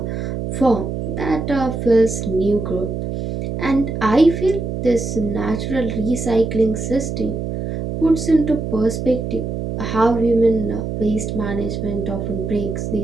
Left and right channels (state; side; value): noise; right; hum, 4 dB below the sound